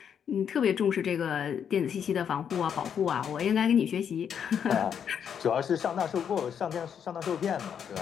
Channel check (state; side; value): quieter; right; 8.0 dB